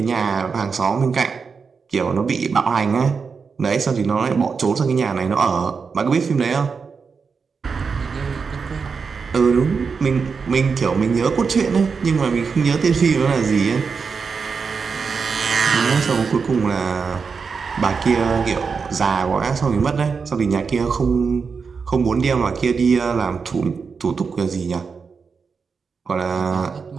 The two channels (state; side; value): quieter; left; 5.4 dB